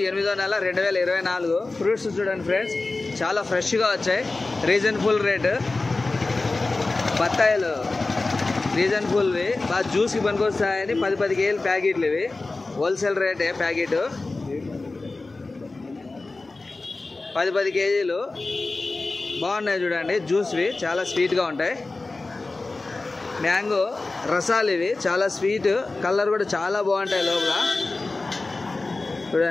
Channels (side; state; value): right; quieter; 3.4 dB